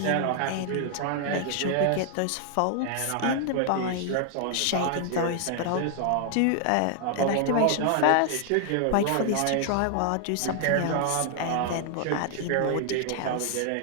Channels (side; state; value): both; different; correlation 0.00